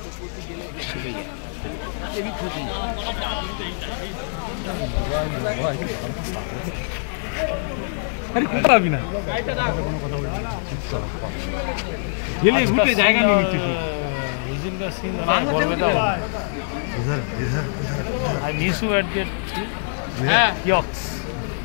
জায়গা নিয়ে নিচ্ছে I miss you at the kiosks.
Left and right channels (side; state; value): right; silent; digital silence